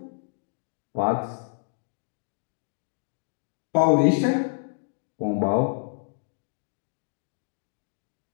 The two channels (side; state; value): right; silent; digital silence